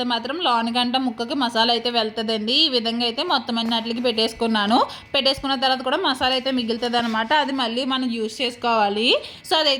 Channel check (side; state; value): both; identical; correlation 1.00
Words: మాత్రం లోనిగంట ముక్కకి మసాలా అయితే వెళ్తుందండి. ఈ విధంగా అయితే మొత్తం అన్నిటికి పెట్టేసుకున్నాను. పెట్టేసుకున్న తర్వాత కూడా మసాలా అయితే మిగులుతుంది అనమాట. అది మళ్ళీ మనం యూస్ చేసుకోవాలి. సో